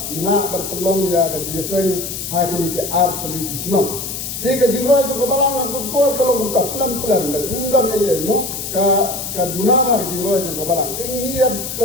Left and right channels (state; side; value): noise; left; hiss, 6 dB below the sound